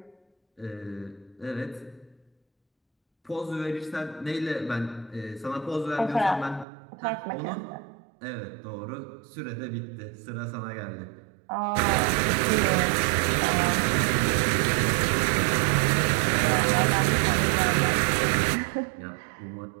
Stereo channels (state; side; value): drops out; left; at 6.7 s